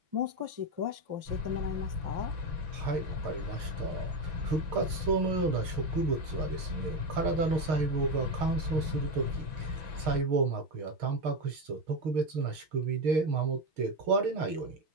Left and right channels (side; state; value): left; late; 6.5 ms